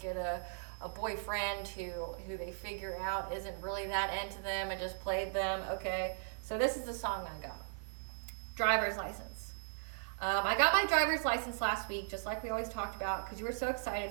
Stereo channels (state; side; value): silent; left; digital silence